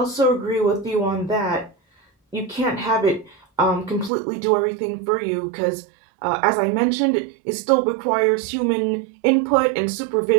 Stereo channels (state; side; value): drops out; left; at 4.1 s